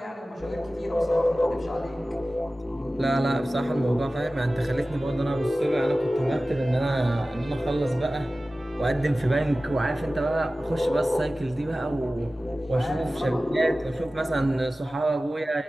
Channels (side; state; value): both; normal; correlation 0.96